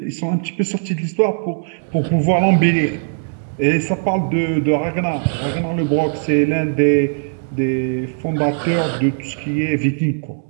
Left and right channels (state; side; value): silent; left; digital silence